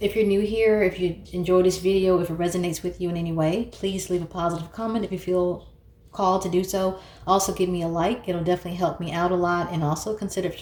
If you're new here, if you enjoy this video, if it resonates with you in any way, please leave a positive comment if you feel called to do so. Also give me a like. It'll definitely help me out a lot, and also consider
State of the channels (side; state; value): both; identical; correlation 1.00